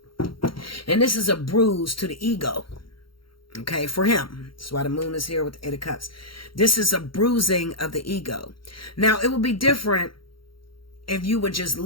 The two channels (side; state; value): right; late; 0.73 ms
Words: And this is a bruise to the ego. Okay, for him. That's why the moon is here with the 8 of Cups. This is a bruising of the ego. Now, it would be different if you would just